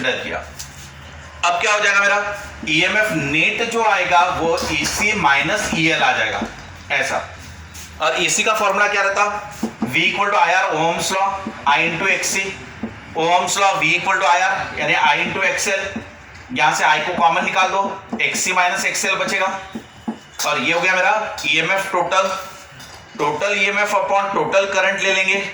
किया। अब क्या हो जाएगा मेरा, EMF नेट जो आएगा वो EC माइनस EL आ जाएगा ऐसा। और EC का फॉर्मूला क्या रहता, V equal to IR, Ohm's law, I into XC, Ohm's law V equal to IR यानी I इंटू XL। यहां से I को कॉमन निकाल दो, XC माइनस XL बचेगा और ये हो गया मेरा EMF total. Total EMF upon total current ले लेंगे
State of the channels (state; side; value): identical; both; correlation 1.00